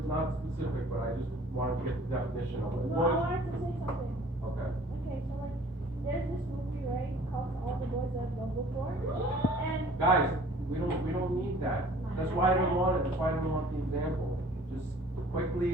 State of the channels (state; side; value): normal; both; correlation 0.51